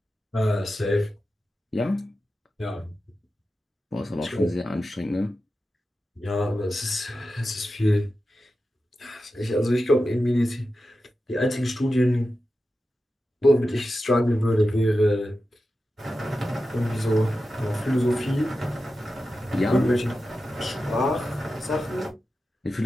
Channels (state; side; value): normal; both; correlation 0.92